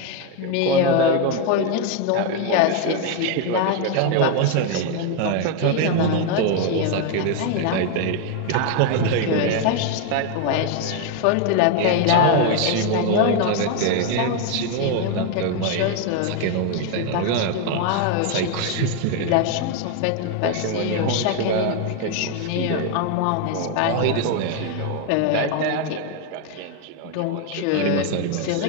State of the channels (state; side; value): different; both; correlation 0.01